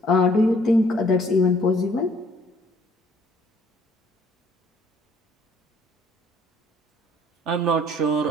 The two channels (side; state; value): both; normal; correlation 0.61